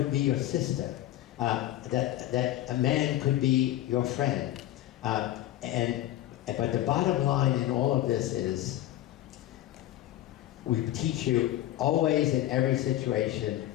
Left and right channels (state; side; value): quieter; right; 13.8 dB